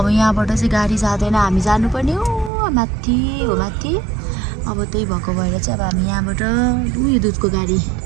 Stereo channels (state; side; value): drops out; left; at 2.5 s